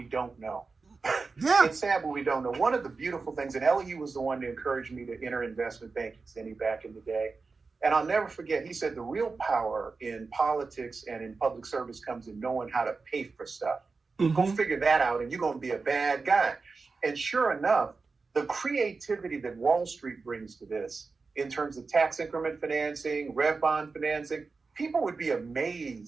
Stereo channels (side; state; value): left; quieter; 4.3 dB